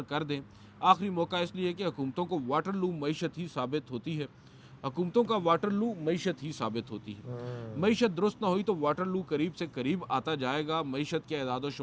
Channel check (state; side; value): identical; both; correlation 1.00